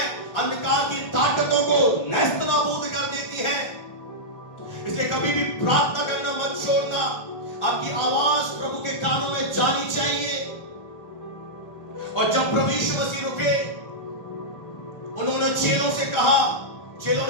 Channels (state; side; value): late; right; 1.4 ms